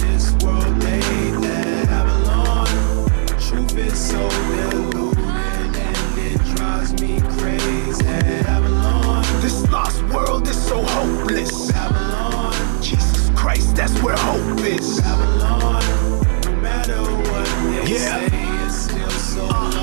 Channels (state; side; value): silent; left; digital silence